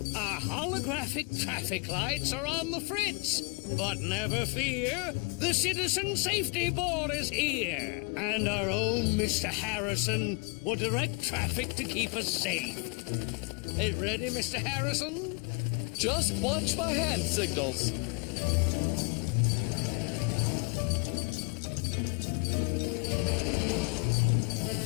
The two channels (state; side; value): quieter; right; 32.3 dB